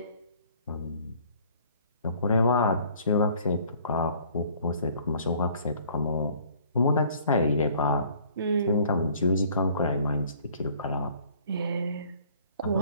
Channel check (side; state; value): both; inverted; correlation -0.56